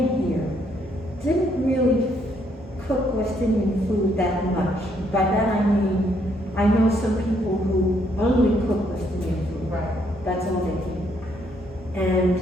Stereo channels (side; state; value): both; normal; correlation 0.71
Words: here, didn't really cook West Indian food that much. By that I mean, I know some people who only cook West Indian food. Right. That's all they do.